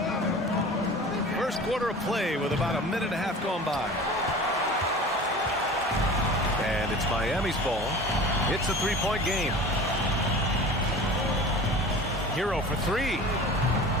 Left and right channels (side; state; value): both; normal; correlation 0.39